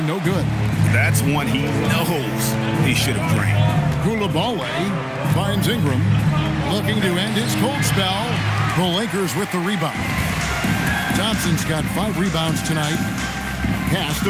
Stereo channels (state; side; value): identical; both; correlation 1.00